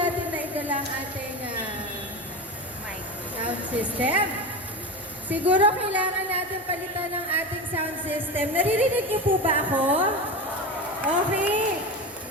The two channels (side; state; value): both; normal; correlation 0.24